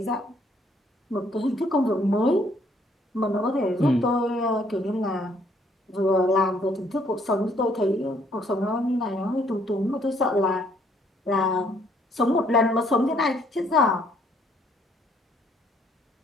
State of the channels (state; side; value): normal; both; correlation 0.65